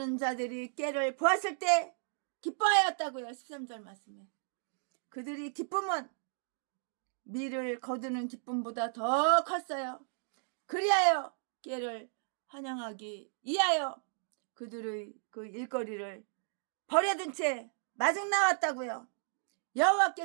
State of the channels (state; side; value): silent; left; digital silence